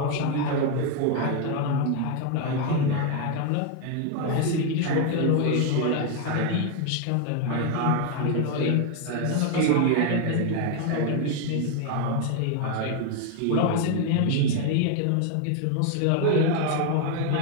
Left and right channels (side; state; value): both; different; correlation 0.01